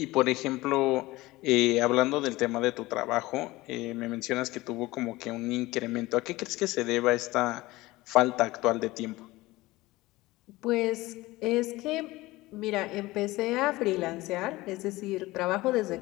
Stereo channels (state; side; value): quieter; right; 19.4 dB